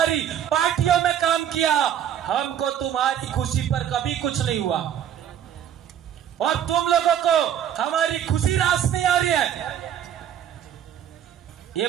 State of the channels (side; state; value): left; quieter; 9.8 dB